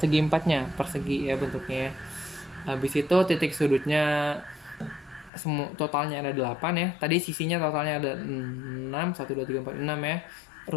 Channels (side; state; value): right; drops out; at 5.3 s